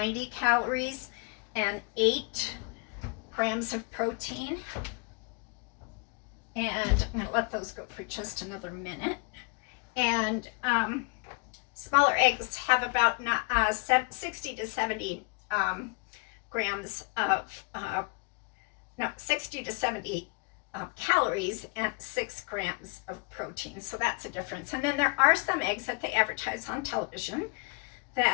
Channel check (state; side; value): quieter; right; 31.2 dB